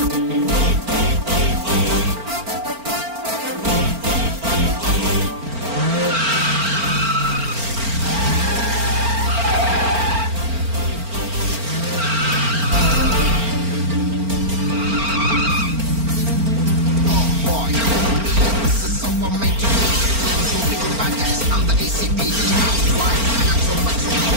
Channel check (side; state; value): left; late; 4.4 ms